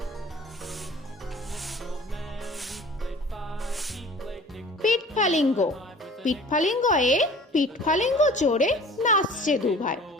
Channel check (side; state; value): both; normal; correlation 0.46